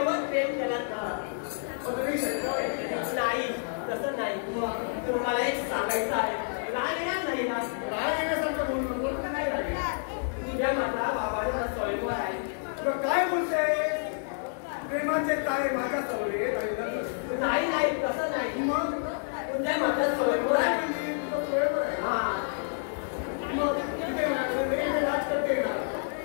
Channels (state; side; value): silent; right; 59 dB below the other